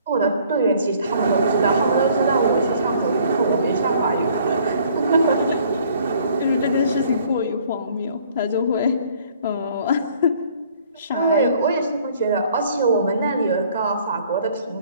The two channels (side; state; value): both; inverted; correlation -0.58